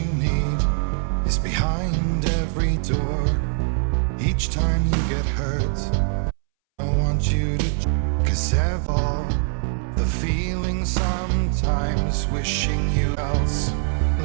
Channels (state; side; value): silent; left; 64 dB below the other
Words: need is behind every door. Each time you get hurt, I want you to, cause all the feeling sometimes wishing you else,